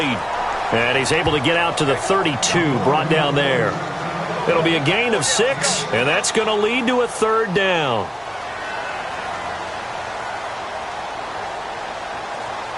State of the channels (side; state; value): both; identical; correlation 1.00